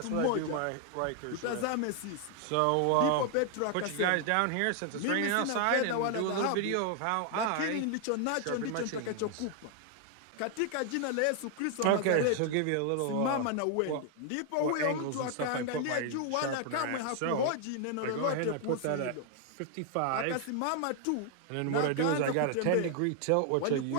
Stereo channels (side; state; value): both; different; correlation 0.00